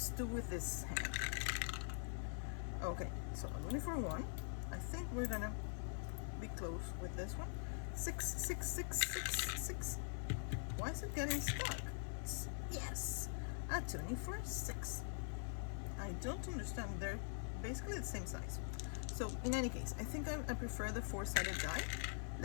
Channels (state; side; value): silent; right; digital silence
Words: do with this hand. Okay, so a Looney for 1. I think we're gonna be close with this one. 6, 6, 6, 6, 6. Why is it getting stuck? Yes! A Toonie for 6. I don't understand. They're basically the same size. So in any case, I think I prefer the 4-sided die.